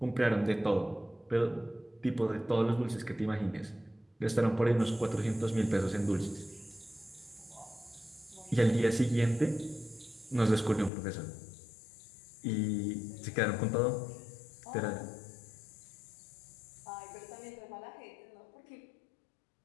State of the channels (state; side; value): drops out; right; at 10.9 s